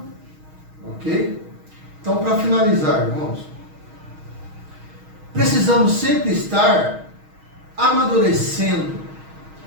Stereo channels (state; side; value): late; left; 6.3 ms